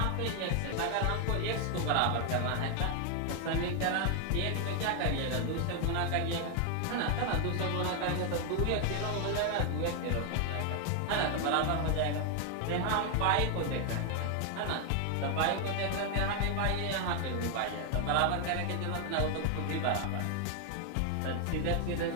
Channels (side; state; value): both; different; correlation 0.00